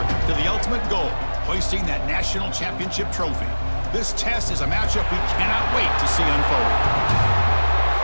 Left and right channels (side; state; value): both; inverted; correlation -1.00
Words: to the ultimate goal, hoisting that national championship trophy. This test is a matchup we cannot wait to see unfold.